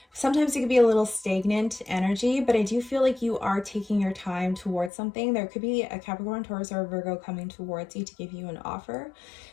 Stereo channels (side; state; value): right; drops out; at 4.9 s